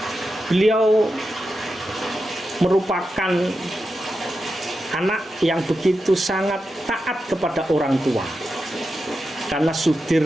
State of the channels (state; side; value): normal; both; correlation 0.89